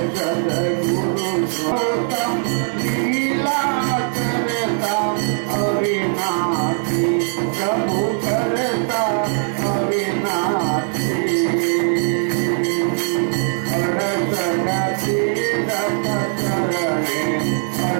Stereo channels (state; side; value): silent; left; digital silence